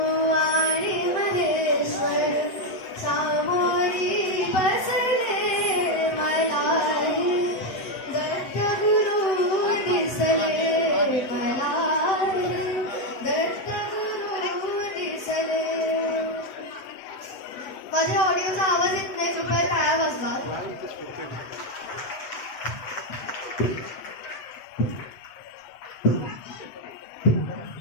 माझ्या ऑडिओचा आवाज येत नाही, कृपया टाळ्या वाजवा.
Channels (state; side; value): late; right; 8.0 ms